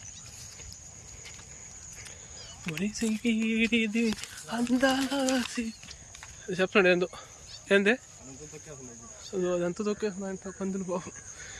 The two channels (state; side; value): identical; both; correlation 1.00